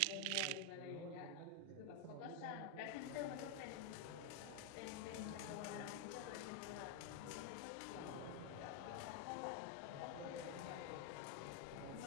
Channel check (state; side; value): different; both; correlation 0.01